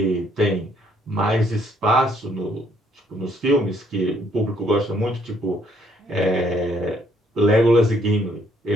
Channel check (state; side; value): normal; both; correlation 0.67